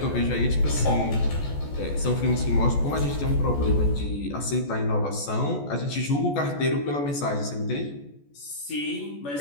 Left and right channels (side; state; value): right; late; 14 ms